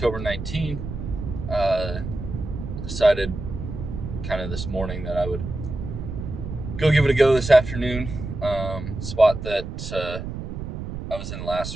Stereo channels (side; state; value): right; noise; rumble, 7 dB below the sound